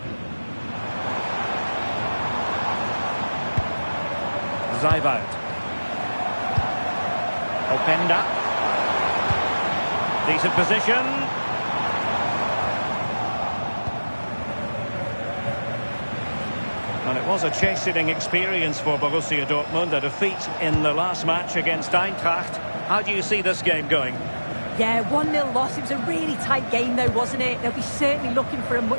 Zijvoud. Openda. Decent position. And it was a chasing experience for Borussia Dortmund, a defeat in the last match against Eintracht. How do you see this game going? Yeah, 1-0 loss. It was a really tight game though, wasn't it? They'll be certainly looking for a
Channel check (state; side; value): inverted; both; correlation -1.00